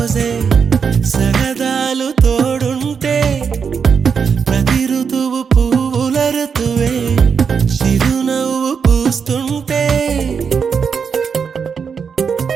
సరదాలు తోడుంటే ప్రతి ఋతువు పువ్వుల ఋతువే చిరునవ్వు పూస్తుంటే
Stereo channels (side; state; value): left; quieter; 6.3 dB